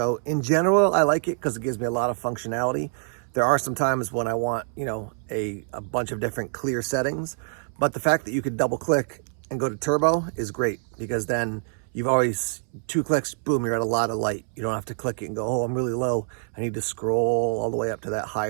in general, I like it because it gives me a lot of functionality. There are some times when I want, a bunch of different clear settings, but the fact that you could double click and go to turbo is great, because then you've always 2 clicks, boom, you're at a lot of light. You don't have to click it and go, oh, I'm really low. I need to scroll all the way up to that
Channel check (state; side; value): silent; left; 61 dB below the other